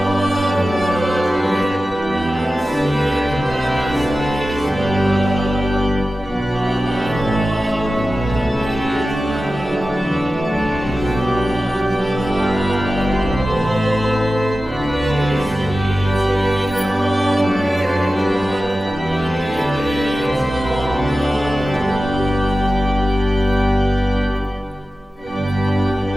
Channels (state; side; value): normal; both; correlation 0.94